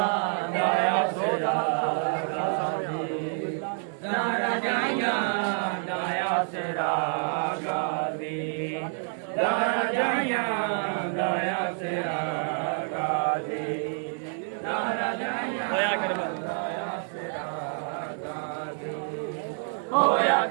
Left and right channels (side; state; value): left; silent; 59 dB below the other